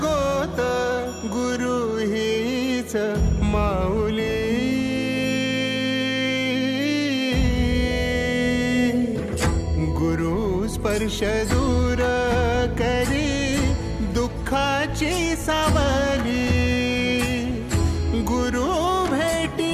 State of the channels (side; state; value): both; identical; correlation 1.00